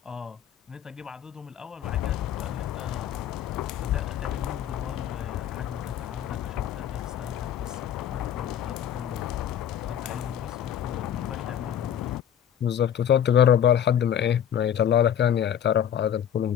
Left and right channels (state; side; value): quieter; right; 9.5 dB